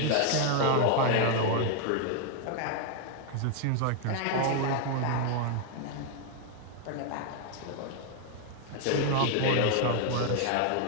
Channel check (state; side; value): different; both; correlation 0.00